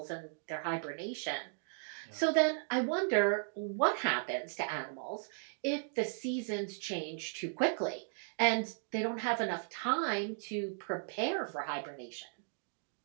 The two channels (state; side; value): silent; left; digital silence